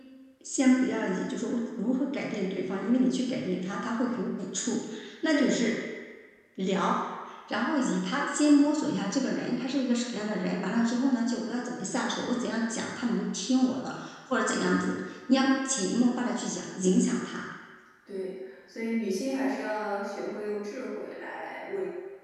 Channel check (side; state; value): both; identical; correlation 1.00